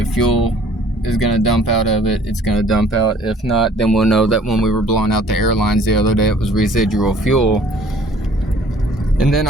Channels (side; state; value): both; normal; correlation 0.55